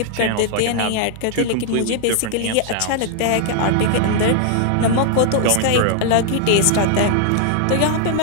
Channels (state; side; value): different; both; correlation -0.01